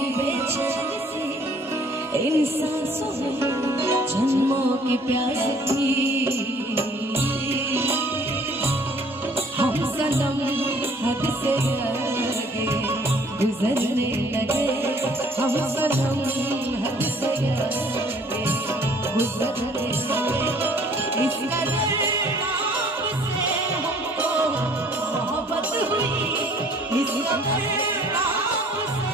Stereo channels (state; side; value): normal; both; correlation 0.57